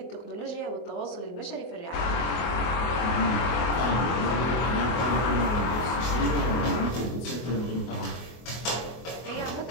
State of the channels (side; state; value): right; late; 24 ms